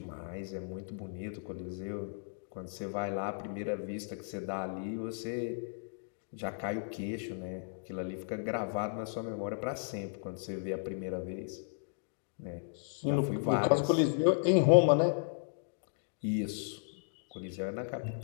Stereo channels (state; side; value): silent; right; digital silence